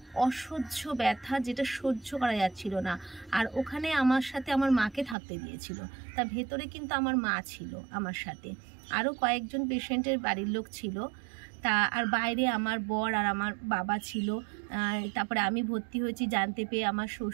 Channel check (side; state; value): left; drops out; at 5.2 s